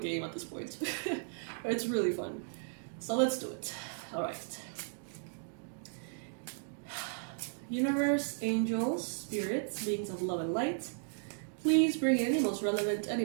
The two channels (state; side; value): silent; left; digital silence